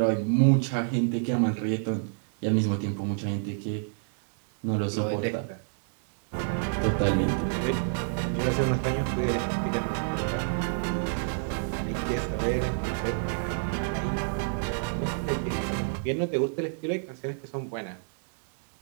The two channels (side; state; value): left; silent; digital silence